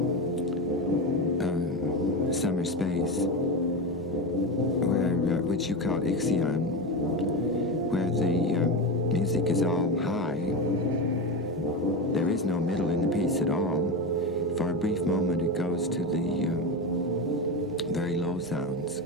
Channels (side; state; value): both; normal; correlation 0.18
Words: Summer Space, which you called Ixion, where the music is all high. There is no middle in the piece at all. For a brief moment it goes to the very low sounds